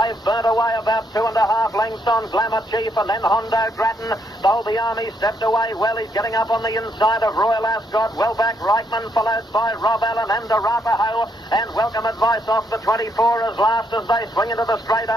burnt away about 2.5 lengths on Glamour Chief, and then Hondo Grattan. Bowlby Army stepped away well. He's getting up on the inside of Royal Ascot. Well back Reichman, followed by Rob Allen and Arapaho, and Welcome Advice off the 24 as last as they swing into the straight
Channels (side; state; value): both; normal; correlation 0.75